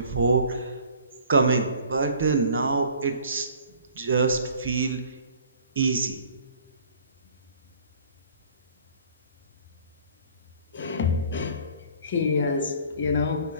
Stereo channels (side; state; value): both; inverted; correlation -0.50